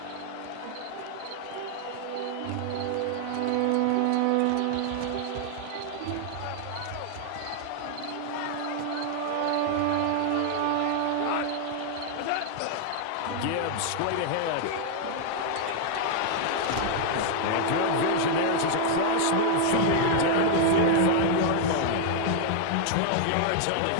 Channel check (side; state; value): both; different; correlation 0.00